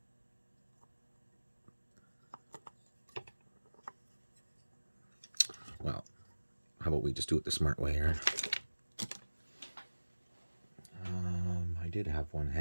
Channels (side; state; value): both; inverted; correlation -1.00